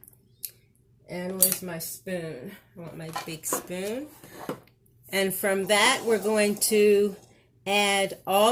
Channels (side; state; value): both; identical; correlation 1.00